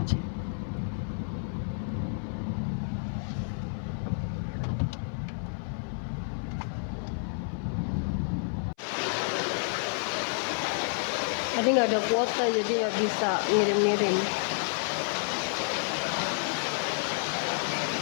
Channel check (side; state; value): right; silent; 56 dB below the other